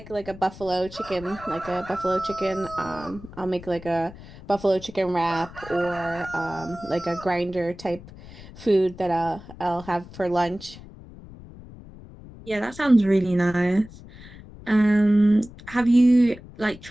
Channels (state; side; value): noise; left; rumble, 17 dB below the sound